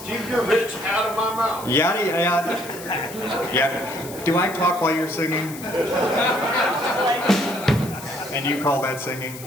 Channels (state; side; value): noise; left; hiss, 14 dB below the sound